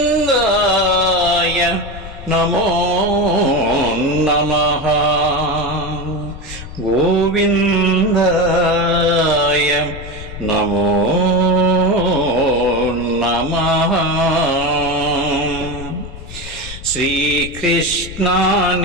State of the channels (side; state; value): left; noise; rumble, 12 dB below the sound